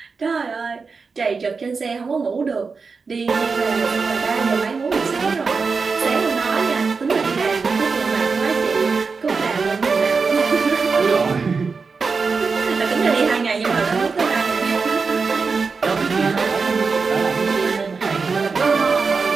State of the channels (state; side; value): quieter; left; 4.8 dB